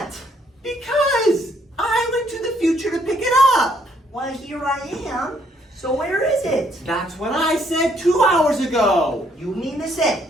Because I went to the future to pick it up. Well, here I am. So where is it? That's what I said 2 hours ago. You mean to say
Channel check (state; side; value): normal; both; correlation 0.69